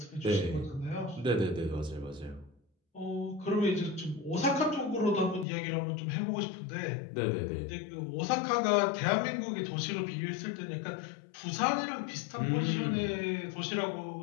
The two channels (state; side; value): drops out; right; at 5.5 s